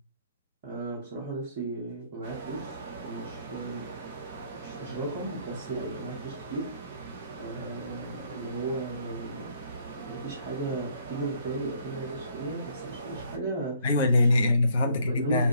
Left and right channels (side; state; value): both; inverted; correlation -0.64